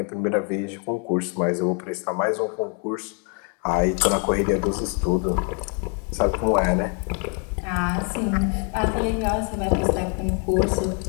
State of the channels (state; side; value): quieter; right; 39.1 dB